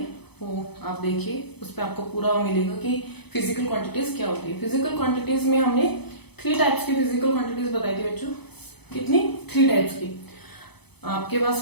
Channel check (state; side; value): late; right; 0.98 ms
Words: वो आप देखिए, उस पर आपको पूरा मिलेगा कि फिजिकल क्वांटिटीज क्या होती है। फिजिकल क्वांटिटीज में हमने 3 टाइप्स की फिजिकल क्वांटिटीज बताई थी बच्चों। कितनी? 3 टाइप्स की। आपके